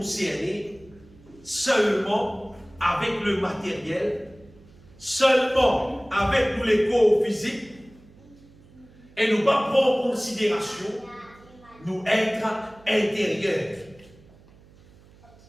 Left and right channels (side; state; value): right; noise; hum, 25 dB below the sound